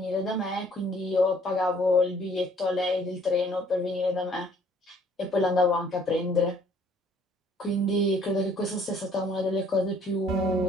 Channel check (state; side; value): normal; both; correlation 0.59